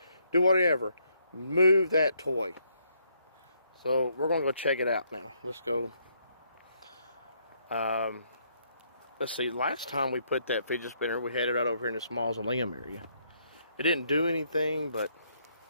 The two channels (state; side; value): inverted; both; correlation -0.72